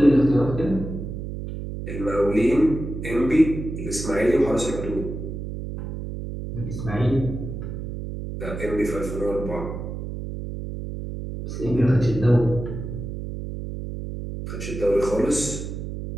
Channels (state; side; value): noise; right; hum, 7 dB below the sound